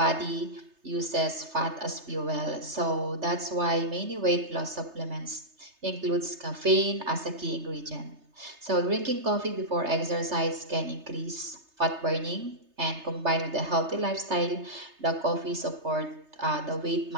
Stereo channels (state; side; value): late; left; 3.3 ms